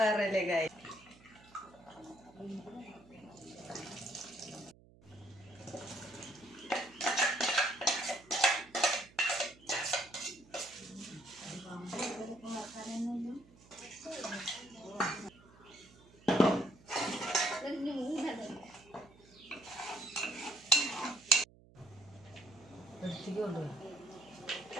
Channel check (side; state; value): right; noise; hum, 25 dB below the sound